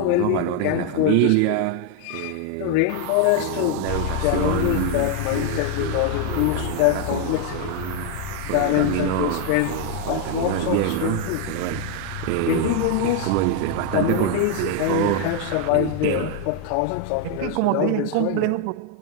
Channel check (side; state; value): both; different; correlation 0.01